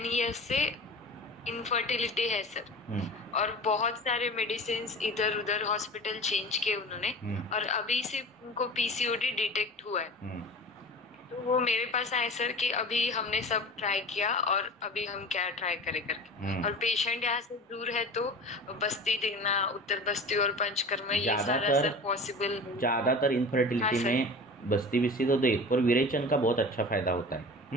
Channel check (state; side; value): normal; both; correlation 0.36